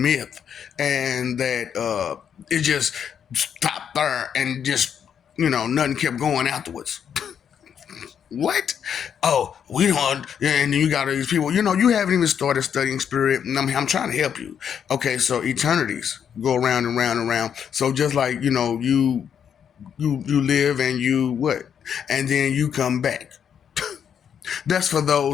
and that it just stopped there and just, nothing kept going afterwards. What? Oh, we don't. And then you got all these people. You haven't even started studying spirit. And I'm trying to help you. Okay, so eternities go around and round and round. So just like you live and you what, and then you come back. That's for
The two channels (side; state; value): right; quieter; 8.1 dB